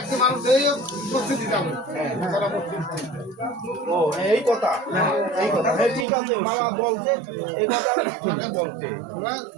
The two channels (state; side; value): drops out; left; at 6.1 s